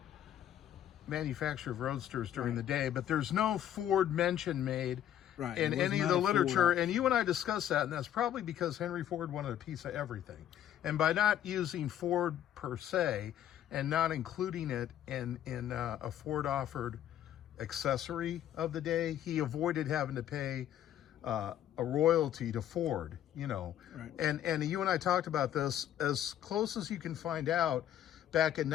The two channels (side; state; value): right; quieter; 11.1 dB